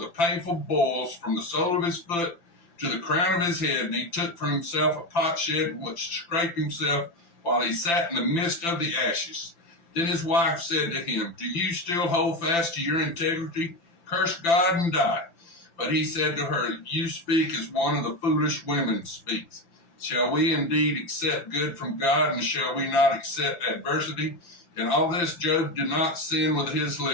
painful boils from the sole of his foot to the crown of his head. And he took for himself a potsherd in which scraped himself while he sat in the midst of the ashes. Then his wife said to him, "Do you still hold fast to your integrity? Curse God and die." But he said to her, "You speak as one of the foolish women speaks. Shall we indeed accept good from God, and shall we not accept adversity?" In all this Job did not sin with his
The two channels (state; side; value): late; right; 5.9 ms